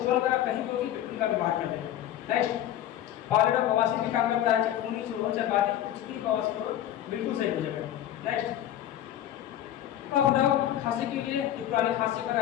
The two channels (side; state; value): right; quieter; 11.9 dB